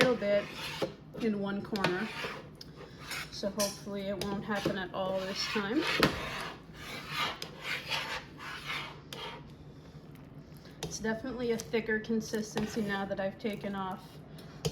bit in one corner, so hopefully it won't happen at all this time. It's definitely a thicker consistency now that I've taken off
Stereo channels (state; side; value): identical; both; correlation 1.00